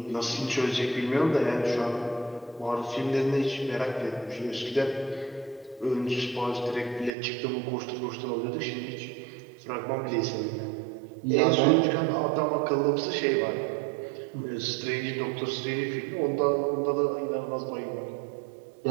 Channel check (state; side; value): drops out; left; at 7.1 s